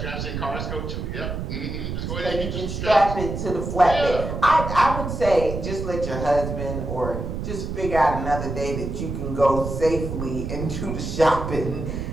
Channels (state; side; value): noise; right; rumble, 5 dB below the sound